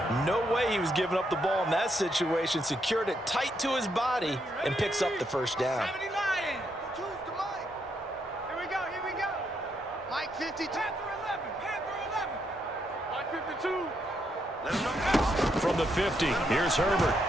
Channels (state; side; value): normal; both; correlation 0.78